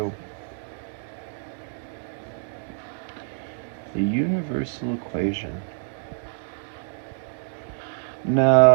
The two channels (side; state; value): left; silent; digital silence